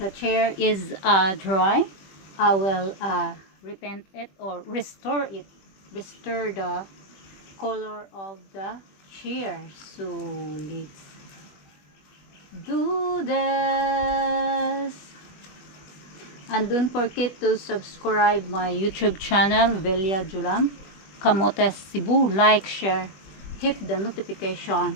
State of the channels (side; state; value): right; late; 21 ms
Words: chair is dry, I will repaint it or restore it, restore the color of the chair. So let's do this. And don't forget to subscribe my YouTube channel, Velia Julam, Camotes Cebu. Like, share, hit the